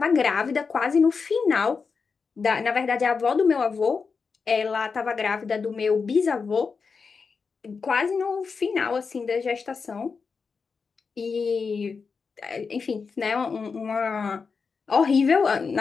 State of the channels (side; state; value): right; quieter; 5.1 dB